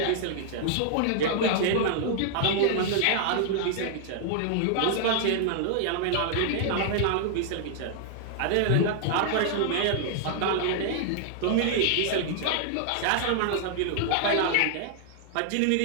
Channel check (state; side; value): different; both; correlation -0.01